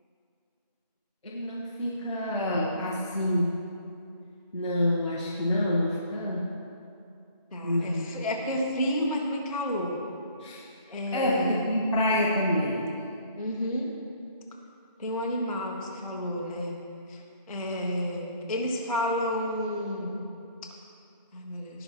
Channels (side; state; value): both; inverted; correlation -0.59